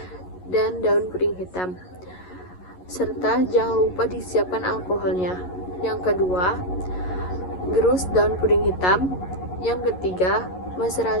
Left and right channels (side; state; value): right; late; 11 ms